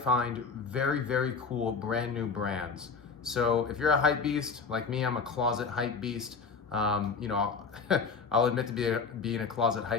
very, very cool brand new brands. So if you're a hype beast, like me, I'm a closet hype beast. I'll admit to being a closet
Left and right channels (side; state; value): right; quieter; 5.1 dB